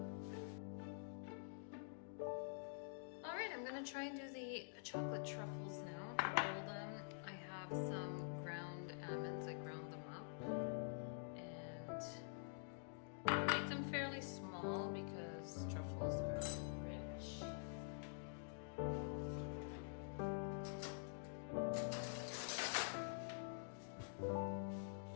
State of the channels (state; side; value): silent; right; digital silence